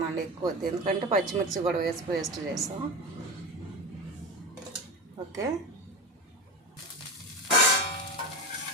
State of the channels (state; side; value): normal; both; correlation 0.24